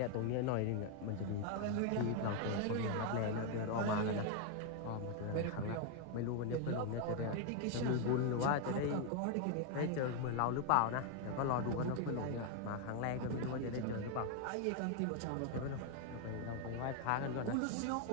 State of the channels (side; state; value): both; different; correlation 0.01